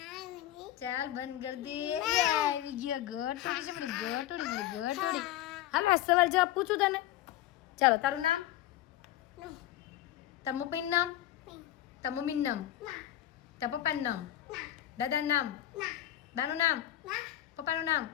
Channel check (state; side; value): quieter; right; 13.4 dB